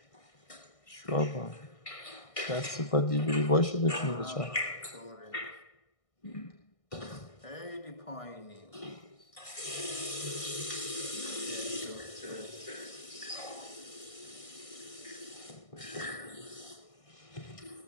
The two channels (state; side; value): late; right; 1.6 ms